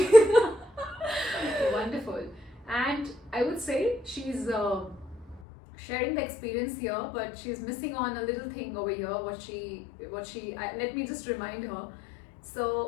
Wonderful. And I would say she's sharing the experience here, but she's missing on a little thing over here. Let me just remind her.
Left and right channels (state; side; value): drops out; right; at 5.4 s